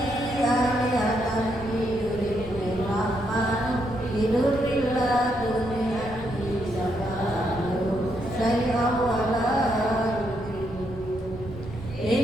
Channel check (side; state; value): right; noise; rumble, 14 dB below the sound